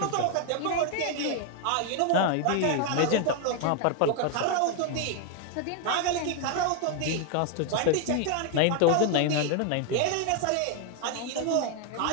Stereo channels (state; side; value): different; both; correlation 0.00